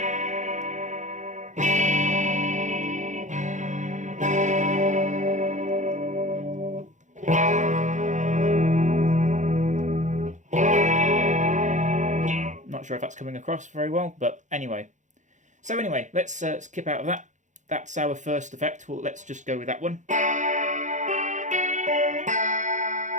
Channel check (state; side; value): late; left; 0.35 ms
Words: Not sure if that's coming across very well, but anyway. So anyway, let's skip out of that. That's our first effect. Well, let's just go with that one.